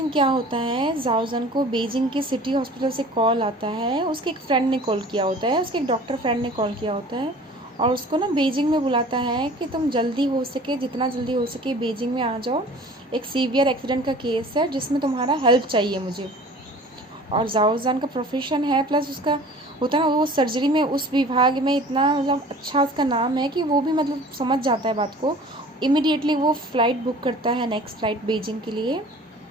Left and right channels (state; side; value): normal; both; correlation 0.45